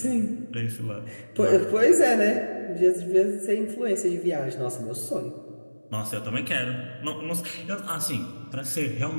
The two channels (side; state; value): both; inverted; correlation -1.00